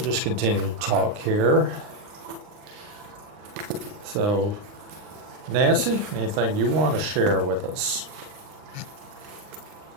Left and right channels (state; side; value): late; left; 39 ms